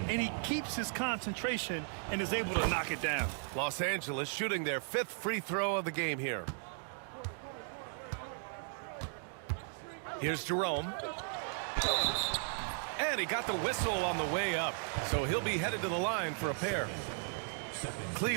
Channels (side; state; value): left; silent; 54 dB below the other